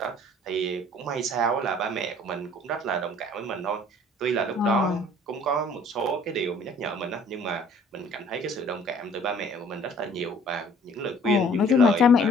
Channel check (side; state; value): both; normal; correlation 0.54